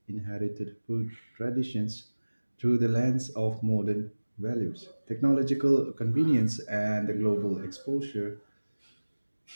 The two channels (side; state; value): both; inverted; correlation -1.00